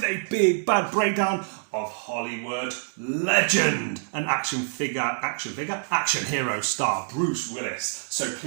a big bad breakdown of Hollywood legend and action hero star Bruce Willis. So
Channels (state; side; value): silent; left; 61 dB below the other